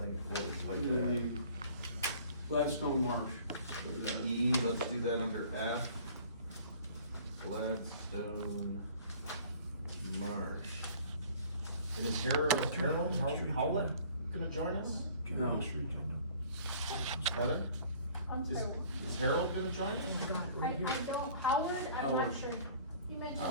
What would you like to add? the Gladstone Marsh. E, let's do that under F. Gladstone Marsh. And is Harold Howlett gonna join us? No. Heather? I'm Is, sorry. is Harold gonna join us? I don't, Howard, I'm not Howard. sure. You mentioned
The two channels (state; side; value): inverted; both; correlation -0.51